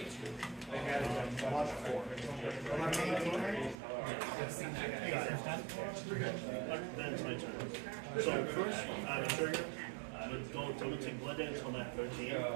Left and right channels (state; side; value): drops out; left; at 3.8 s